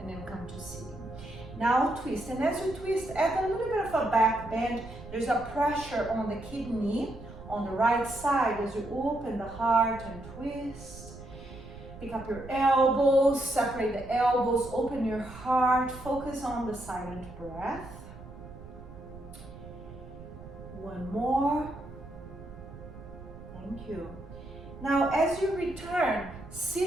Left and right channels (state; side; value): noise; right; rumble, 15 dB below the sound